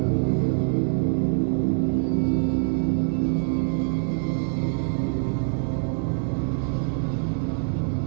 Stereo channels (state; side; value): silent; left; digital silence